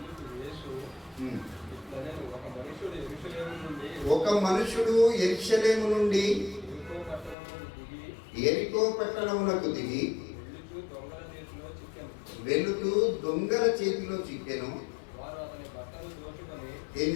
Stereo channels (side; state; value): right; drops out; at 7.4 s